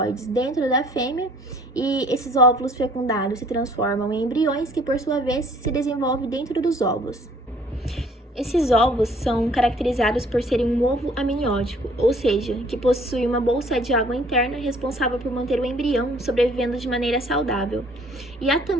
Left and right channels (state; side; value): normal; both; correlation 0.57